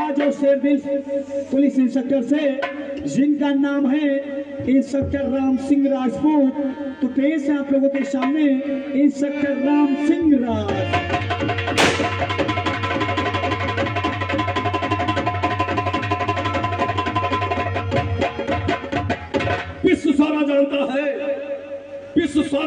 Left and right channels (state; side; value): identical; both; correlation 1.00